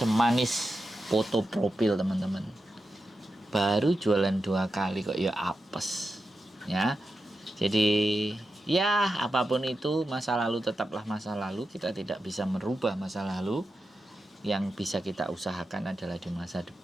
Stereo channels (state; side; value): normal; both; correlation 0.90